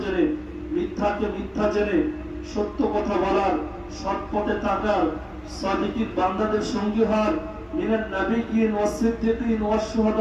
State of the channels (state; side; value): identical; both; correlation 1.00